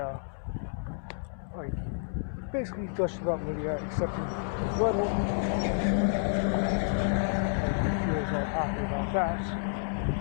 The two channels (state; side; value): silent; right; 58 dB below the other